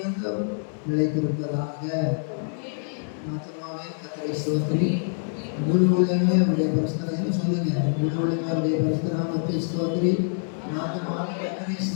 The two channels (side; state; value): right; silent; digital silence